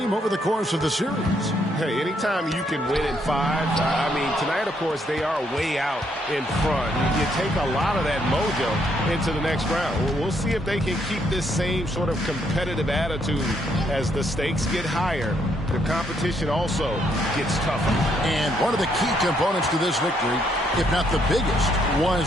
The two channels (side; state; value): both; normal; correlation 0.73